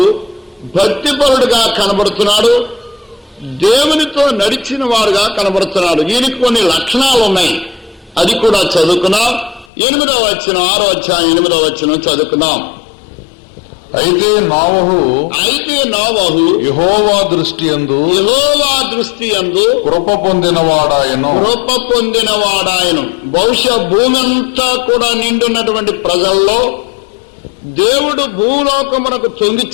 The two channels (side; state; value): right; drops out; at 9.7 s